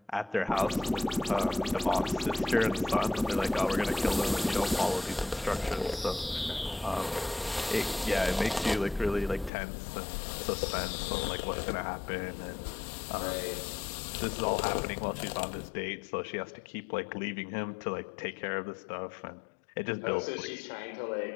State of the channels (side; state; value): right; drops out; at 9.5 s